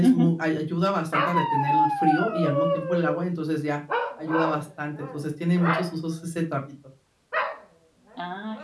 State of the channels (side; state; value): both; identical; correlation 1.00